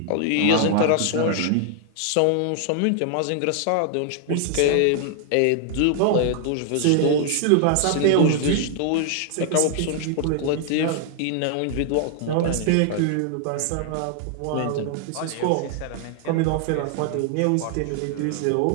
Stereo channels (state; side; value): different; both; correlation 0.00